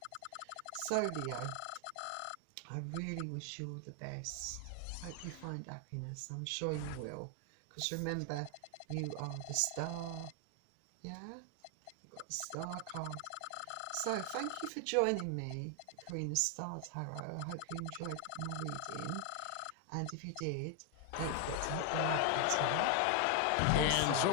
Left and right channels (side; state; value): both; different; correlation 0.00